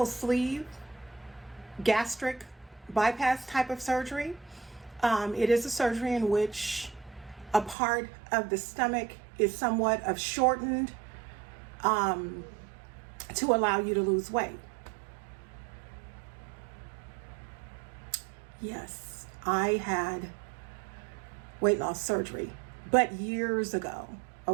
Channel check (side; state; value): left; drops out; at 7.8 s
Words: sleeve gastric bypass type of surgery. It is a surgery in which a part of the stomach is somewhat of shortened to allow you to lose weight. Yes, I had weight loss surgery, but years ago,